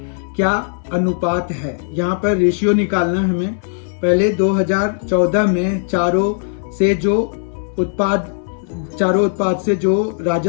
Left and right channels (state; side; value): silent; right; 67 dB below the other